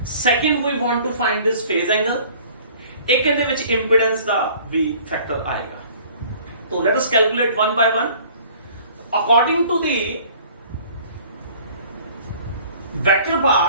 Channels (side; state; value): both; inverted; correlation -0.52